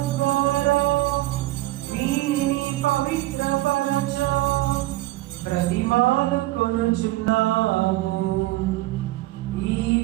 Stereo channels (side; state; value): left; quieter; 17.8 dB